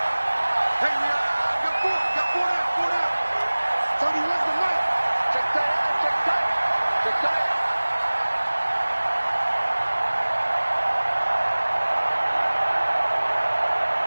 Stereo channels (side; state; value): both; inverted; correlation -1.00